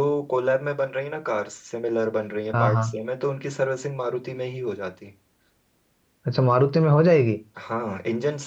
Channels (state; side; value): identical; both; correlation 1.00